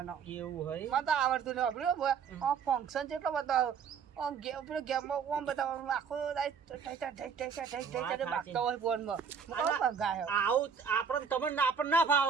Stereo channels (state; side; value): quieter; left; 6.6 dB